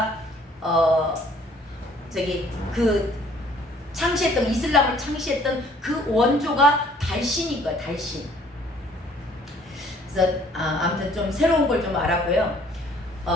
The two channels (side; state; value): both; normal; correlation 0.58